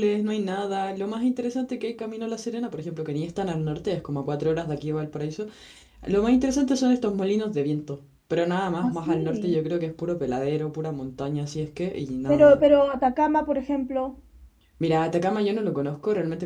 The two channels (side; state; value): both; identical; correlation 1.00